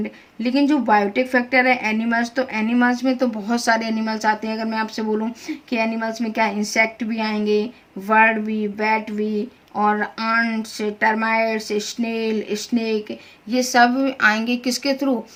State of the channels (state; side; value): identical; both; correlation 1.00